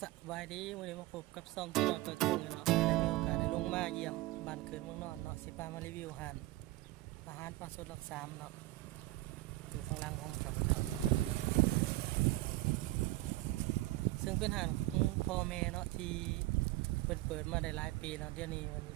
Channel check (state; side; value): quieter; left; 18.1 dB